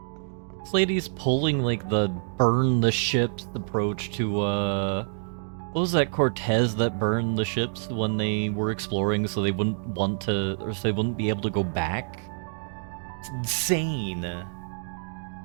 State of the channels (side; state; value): left; silent; 60 dB below the other